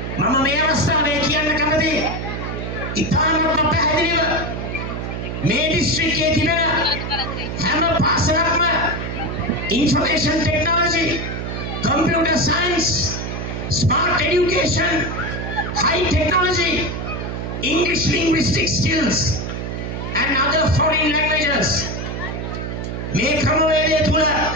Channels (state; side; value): noise; right; hum, 5 dB below the sound